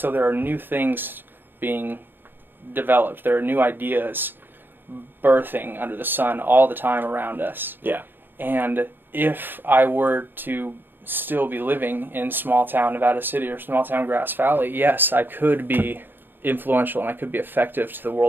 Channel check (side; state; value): left; late; 0.097 ms